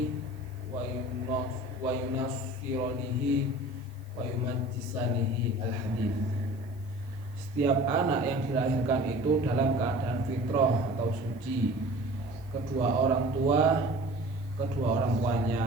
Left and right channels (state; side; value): noise; left; hiss, 30 dB below the sound